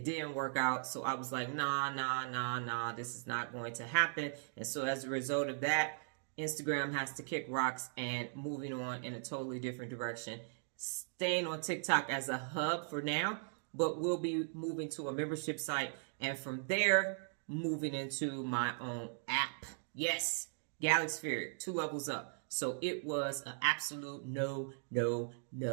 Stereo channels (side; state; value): left; silent; digital silence